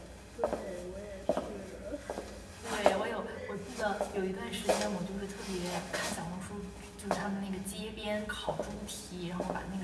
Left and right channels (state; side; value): identical; both; correlation 1.00